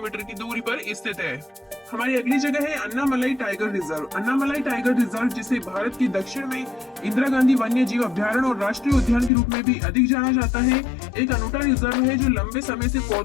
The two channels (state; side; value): drops out; right; at 9.3 s